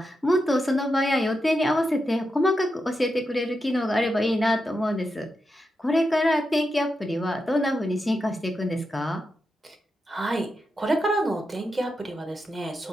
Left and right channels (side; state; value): both; normal; correlation 0.87